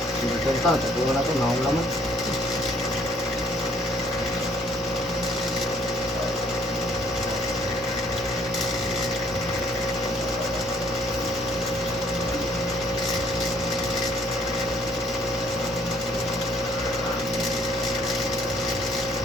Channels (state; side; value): normal; both; correlation 0.62